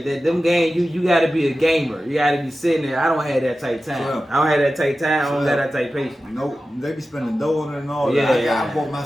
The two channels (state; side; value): normal; both; correlation 0.94